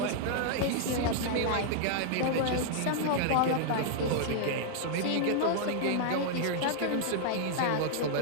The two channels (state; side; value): different; both; correlation -0.01